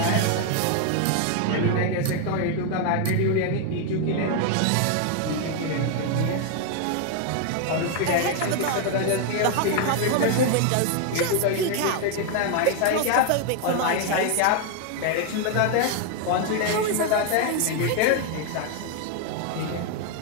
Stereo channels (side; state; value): both; different; correlation 0.01